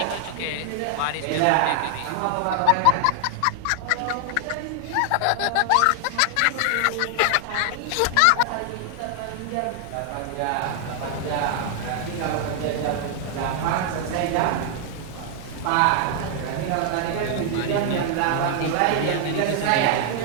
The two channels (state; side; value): different; both; correlation 0.00